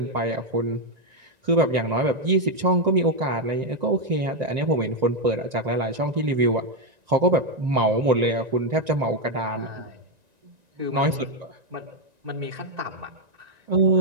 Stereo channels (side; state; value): left; late; 1.9 ms